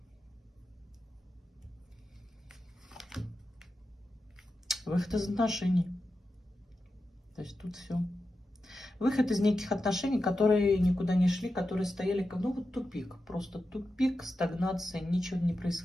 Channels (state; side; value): normal; both; correlation 0.90